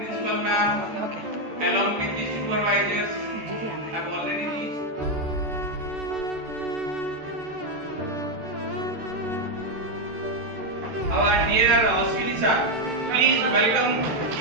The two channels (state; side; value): late; left; 13 ms